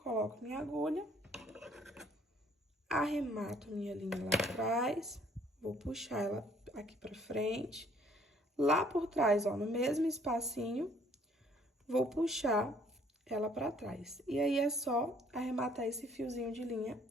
minha agulha, arremato minha linha lá atrás, vou puxar ela aqui pra frente. Lá por trás, ó, no mesmo espacinho, vou puxar ela pra trás. E aí, é só arrematar esse fiozinho de linha,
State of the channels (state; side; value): normal; both; correlation 0.61